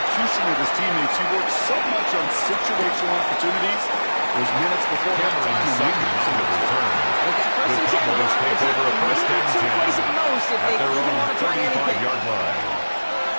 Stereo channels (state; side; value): inverted; both; correlation -1.00